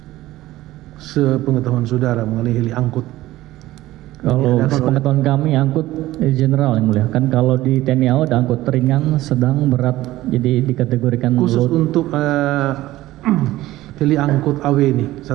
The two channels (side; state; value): left; quieter; 16.3 dB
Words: Sepengetahuan saudara mengenai heli angkut. Kalau sepengetahuan kami angkut general yang mulia. Kan kalau di TNI AU ada angkut ringan, sedang, berat. Jadi dikategorikan Khusus load. untuk heli angkut AW ini